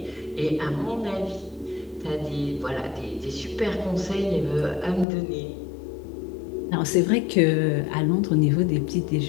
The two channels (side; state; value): right; drops out; at 5.1 s